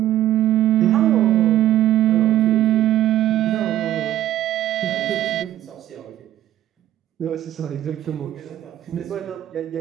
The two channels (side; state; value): left; quieter; 12.8 dB